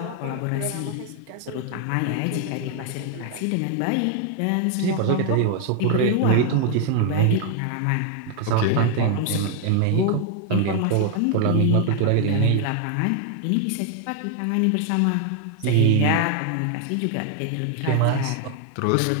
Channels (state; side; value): different; both; correlation 0.00